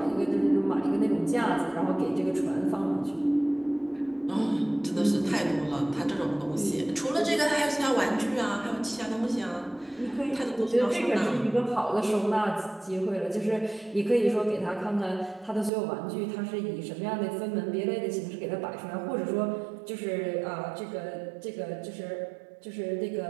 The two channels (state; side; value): drops out; left; at 15.7 s